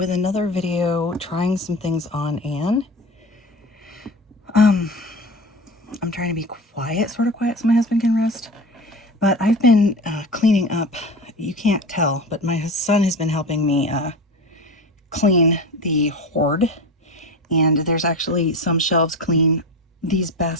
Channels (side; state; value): both; normal; correlation 0.30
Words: another video trying some things on Anne. I'm trying to be quiet, sort of quiet, so my husband can rest. But I've been cleaning up. You can't tell, but my son has been helping me clean the hoard. And there's actually some shelves clean. These